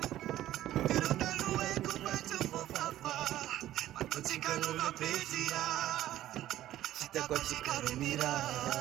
Chicano va pedia, chita kwa chicano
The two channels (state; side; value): quieter; left; 13.5 dB